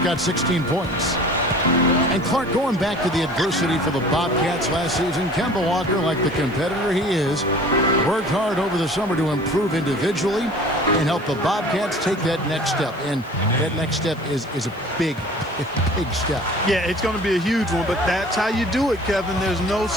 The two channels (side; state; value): left; noise; hiss, 27 dB below the sound